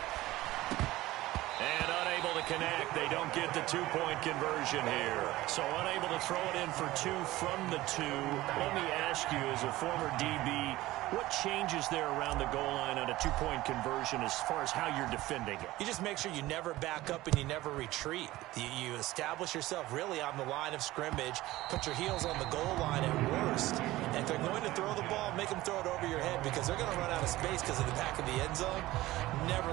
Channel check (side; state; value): left; quieter; 17.4 dB